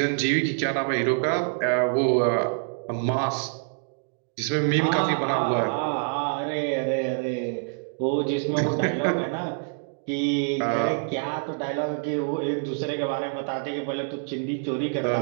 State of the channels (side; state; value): left; silent; digital silence